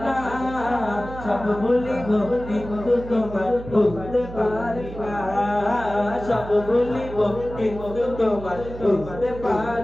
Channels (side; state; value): right; noise; hum, 12 dB below the sound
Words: সব ভুলিব কিন্তু তোমার ভুলতে পারি না সব ভুলিব কিন্তু তোমার ভুলতে